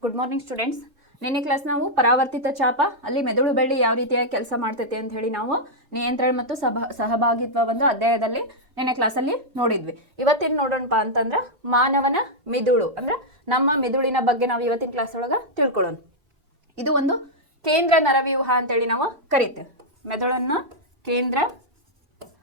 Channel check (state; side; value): late; left; 2.9 ms